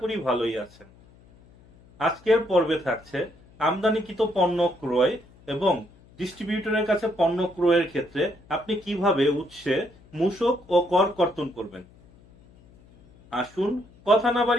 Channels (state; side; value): noise; left; hum, 27 dB below the sound